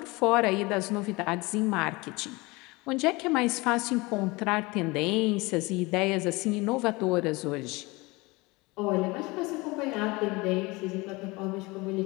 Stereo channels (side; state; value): right; quieter; 23.8 dB